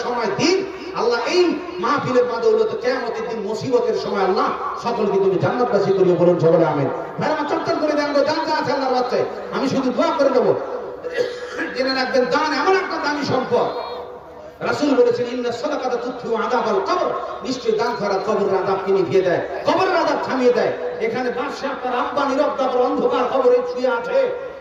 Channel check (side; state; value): both; identical; correlation 1.00